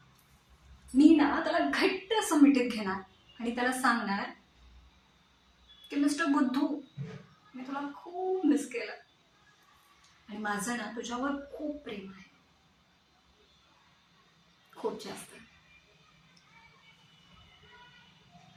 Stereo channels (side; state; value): both; identical; correlation 1.00